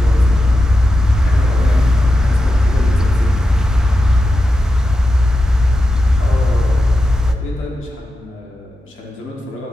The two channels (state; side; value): normal; both; correlation 0.90